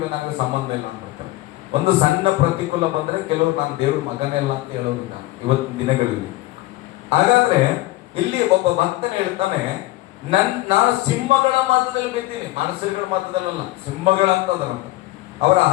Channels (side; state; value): right; quieter; 18.0 dB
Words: ನನಗೆ ಸಂಬಂಧ ಇಲ್ಲ ಅಂದ್ಬಿಡ್ತಾರೆ. ಒಂದು ಸಣ್ಣ ಪ್ರತಿಕೂಲ ಬಂದ್ರೆ ಕೆಲವರು ನಾನು ದೇವ್ರ ಮಗನೇ ಇಲ್ಲ ಅಂತ ಹೇಳೋದಿಲ್ಲ ಇವತ್ತಿನ ದಿನಗಳಲ್ಲಿ. ಹಾಗಾದ್ರೆ ಇಲ್ಲಿ ಒಬ್ಬ ಭಕ್ತನ ಹೇಳ್ತಾನೆ, ನಾನು ಸಿಂಹಗಳ ಮಧ್ಯದಲ್ಲಿ ಬಿದ್ದೀನಿ. ಮನುಷ್ಯರುಗಳ ಮಧ್ಯದಲ್ಲ, ಸಿಂಹಗಳಂತದಲ್ಲ. ಅವರ